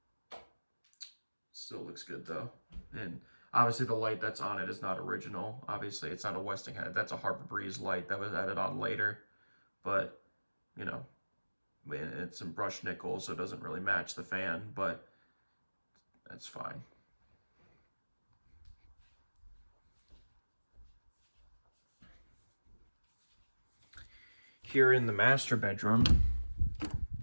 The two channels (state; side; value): inverted; both; correlation -1.00